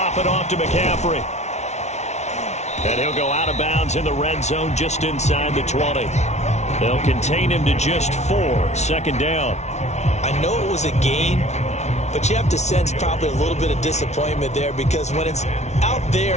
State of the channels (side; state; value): right; late; 0.32 ms